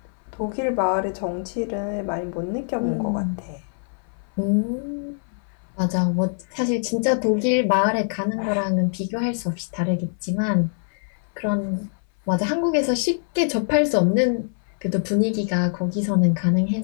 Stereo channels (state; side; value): silent; right; 60 dB below the other